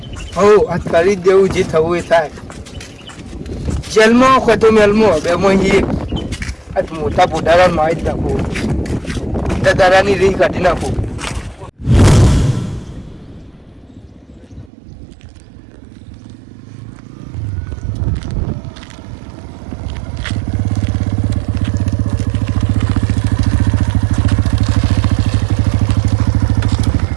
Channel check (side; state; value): left; drops out; at 14.7 s